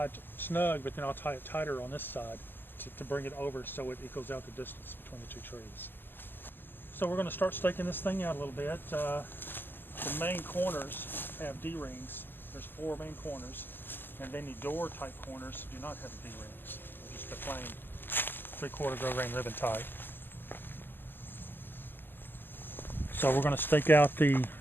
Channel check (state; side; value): late; right; 0.098 ms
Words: it snug, but then I'll tie it tighter on this side to bring it over so it equals out the distance between the 2 trees. So we're going to start staking this thing out a little bit. The main corners have D-rings. There's 4 main corners, and then the door type corners do not have the D-rings. They're just the plain 3/4 grow grain ribbon type. So we're going to stake out the